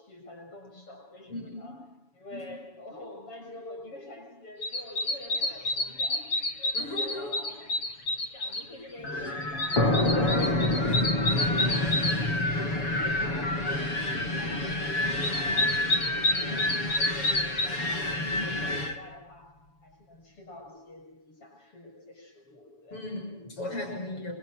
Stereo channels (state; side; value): late; right; 7.1 ms